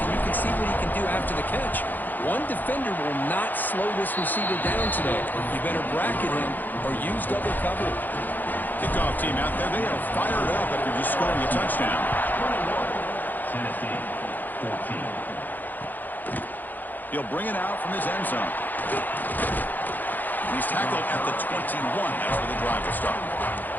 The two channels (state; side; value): late; right; 0.086 ms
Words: and you can see what he can do after the catch. One defender will not slow this receiver down today. You better bracket him or use double coverage. Kickoff team out there. They are fired up after just scoring a touchdown. Tennessee, 14. He'll bring it out from his end zone. He's tackled at the 21. That's where the drive will start.